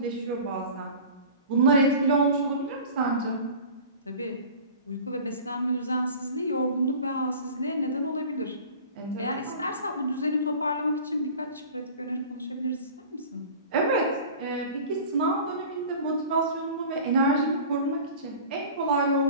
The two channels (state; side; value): inverted; both; correlation -0.40